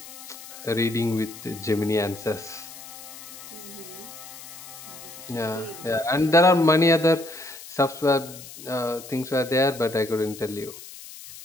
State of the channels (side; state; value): left; noise; hiss, 15 dB below the sound